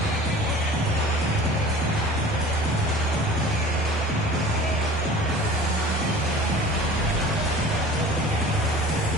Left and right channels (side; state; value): both; normal; correlation 0.42